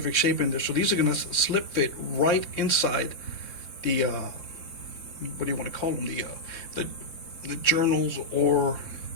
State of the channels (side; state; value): right; late; 3.6 ms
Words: shape in there, so these are going to slip fit right inside the what do you want to call them, the journals or